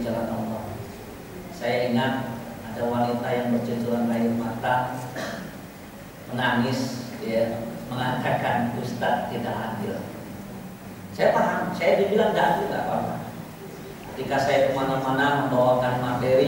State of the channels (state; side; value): identical; both; correlation 1.00